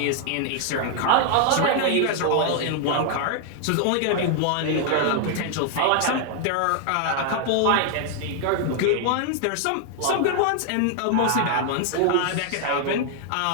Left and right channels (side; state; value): both; different; correlation 0.00